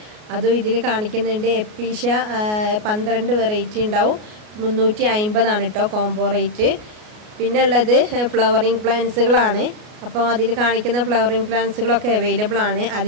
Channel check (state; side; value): late; left; 33 ms